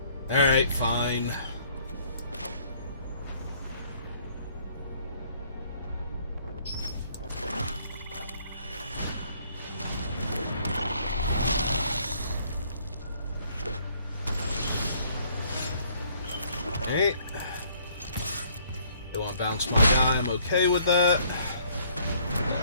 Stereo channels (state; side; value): inverted; both; correlation -0.62